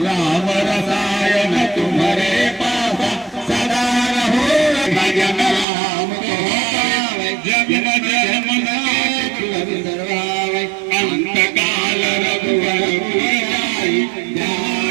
राम रसायन तुम्हारे पासा सदा रहो भजन राम को जन्म जन्म सर्वावै अंत काल रघुवर जाई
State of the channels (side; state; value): left; drops out; at 5.7 s